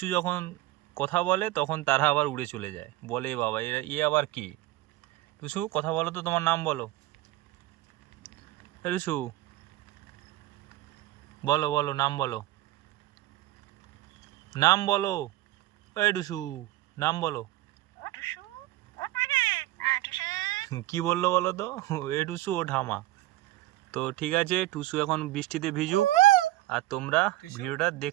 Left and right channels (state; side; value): quieter; left; 16.6 dB